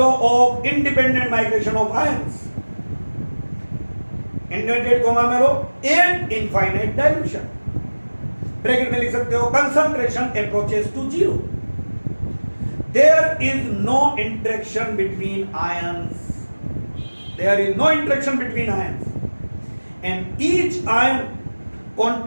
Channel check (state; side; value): inverted; both; correlation -1.00